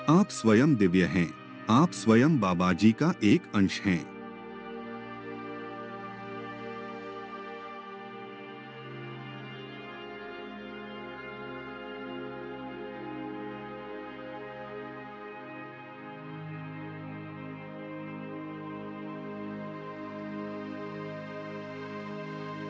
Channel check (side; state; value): both; identical; correlation 1.00